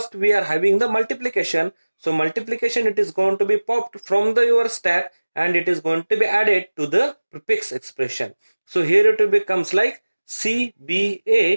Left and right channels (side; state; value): both; inverted; correlation -1.00